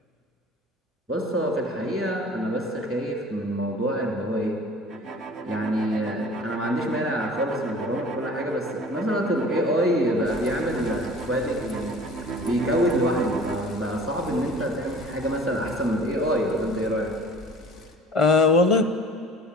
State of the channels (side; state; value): both; normal; correlation 0.45